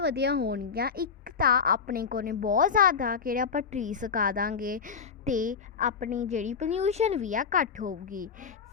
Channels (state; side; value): quieter; right; 6.1 dB